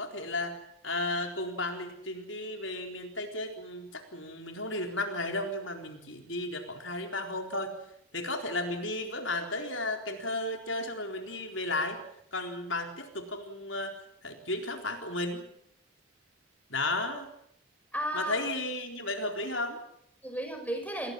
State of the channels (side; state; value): both; normal; correlation -0.03